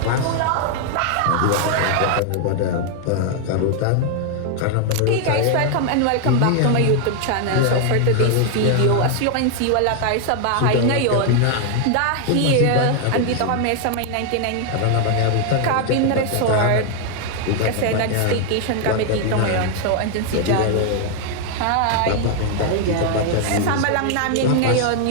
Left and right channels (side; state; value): both; different; correlation 0.00